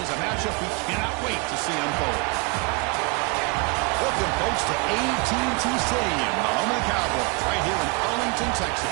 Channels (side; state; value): left; quieter; 30.6 dB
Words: is a matchup we cannot wait to see unfold. Welcome, folks, to AT&T Stadium, the home of the Cowboys, right here in Arlington,